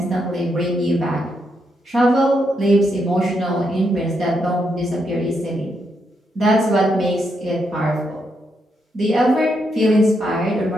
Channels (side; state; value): both; normal; correlation 0.80